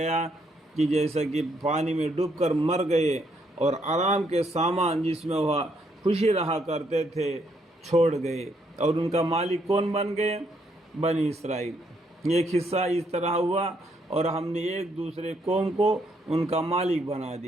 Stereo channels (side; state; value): both; normal; correlation 0.73